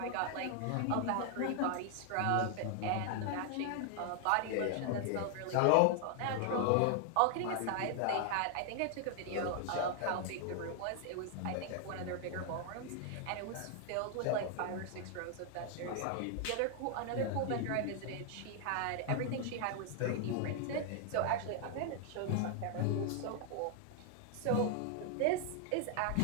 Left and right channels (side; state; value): both; different; correlation 0.00